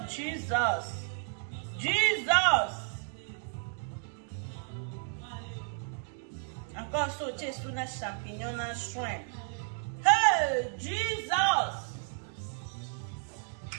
Jesus! Jesus! Encore sauté sous les champignons dans shrimp. Hey, Jesus!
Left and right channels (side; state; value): left; silent; 56 dB below the other